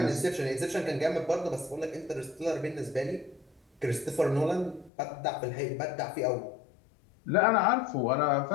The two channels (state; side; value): drops out; right; at 4.9 s